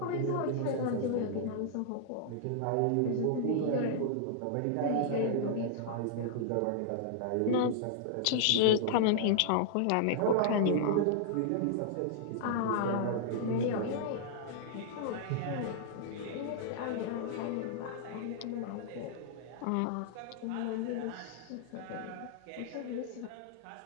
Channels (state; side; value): different; both; correlation -0.01